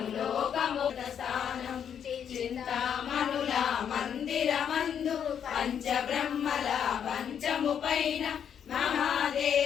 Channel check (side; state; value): right; quieter; 8.4 dB